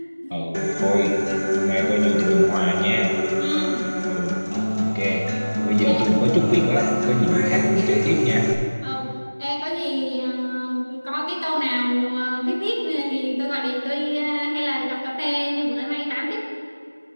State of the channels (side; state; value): both; inverted; correlation -1.00